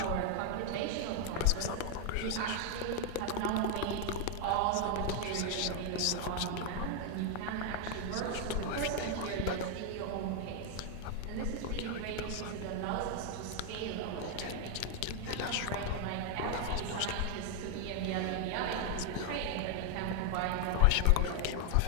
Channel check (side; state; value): both; different; correlation 0.00